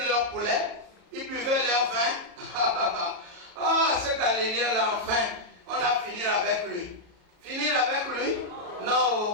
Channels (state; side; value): late; left; 33 ms